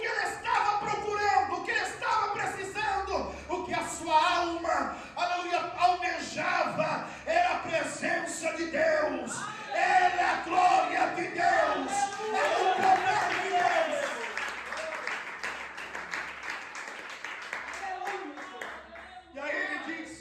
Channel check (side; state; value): both; identical; correlation 1.00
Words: ele estava procurando, o que ele estava precisando, o que a sua alma, aleluia, almejava, era a presença de Deus, era a glória de Deus, era o poder de Deus. E aí ele